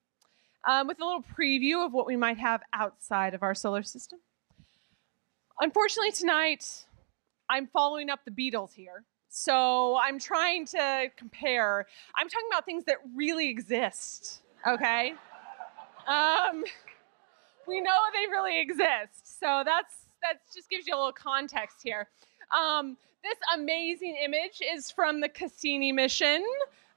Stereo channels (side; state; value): left; silent; digital silence